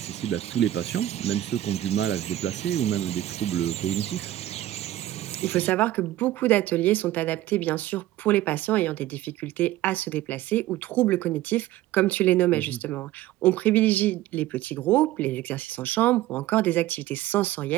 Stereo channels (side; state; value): left; quieter; 14.6 dB